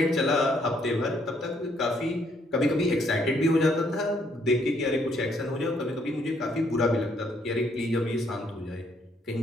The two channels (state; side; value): normal; both; correlation 0.69